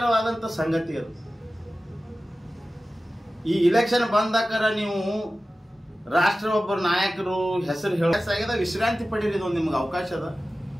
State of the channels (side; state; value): both; normal; correlation 0.95